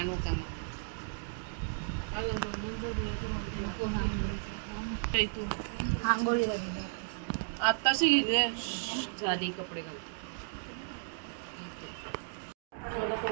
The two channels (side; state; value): left; silent; digital silence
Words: का आंघोळी आत्ताशी गेले झाली कपडे घाल